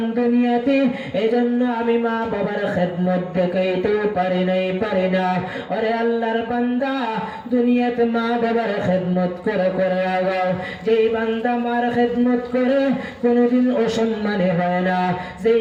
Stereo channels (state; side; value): identical; both; correlation 1.00